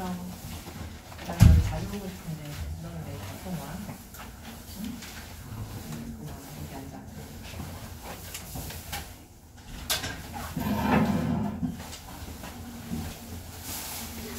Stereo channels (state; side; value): identical; both; correlation 1.00